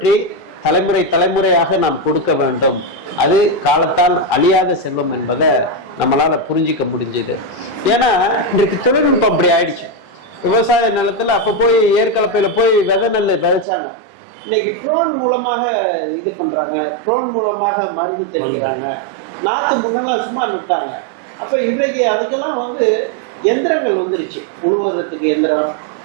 தலைமுறை தலைமுறையாக நாம் கொடுக்க வேண்டும், அது காலத்தால் அழியாத செல்வம் என்பதை நம்மளால புரிஞ்சிக்க முடிஞ்சது. ஏன்னா இன்றைக்கு தொழில்நுட்பம் அப்படி ஆயிடுச்சு. விவசாய நிலத்துல அப்ப போய் ஏற்கலப்பையில போய் விதை நெல் விதைச்சாங்க. இன்னைக்கு ட்ரோன் மூலமாக இது பண்றாங்க, ட்ரோன் மூலமாக மருந்து தெளிக்கிறாங்க. நாத்து முன்னெல்லாம் சும்மா நட்டாங்க. அப்ப இன்றைக்கு அதுக்கெல்லாம் வந்து எந்திரங்கள் வந்துருச்சு. உழுவுறதுக்கு எந்திரம்,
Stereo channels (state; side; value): drops out; left; at 13.7 s